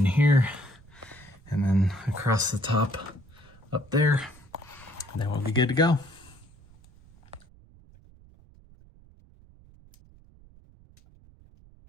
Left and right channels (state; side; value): noise; right; rumble, 25 dB below the sound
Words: here, and then across the top up there, and then we'll be good to go.